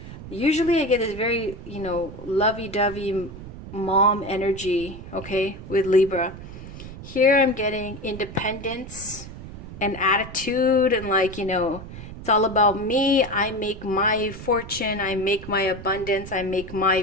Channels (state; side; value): noise; right; rumble, 13 dB below the sound